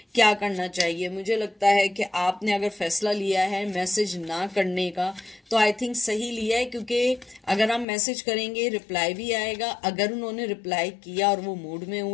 क्या करना चाहिए। मुझे लगता है कि आपने अगर फैसला लिया है मैसेज ना करने का तो आई थिंक सही लिया है, क्योंकि अगर हम मैसेज करेंगे रिप्लाई भी आएगा। अगर उन्होंने रिप्लाई किया और वो मूड में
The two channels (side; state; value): right; drops out; at 7.9 s